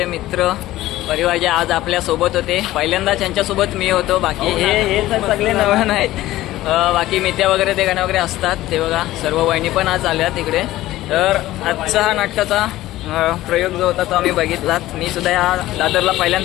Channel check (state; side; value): quieter; right; 15.8 dB